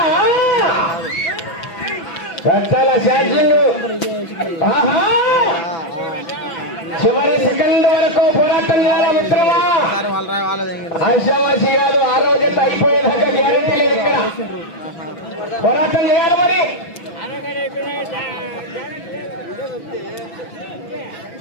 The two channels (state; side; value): late; right; 6.0 ms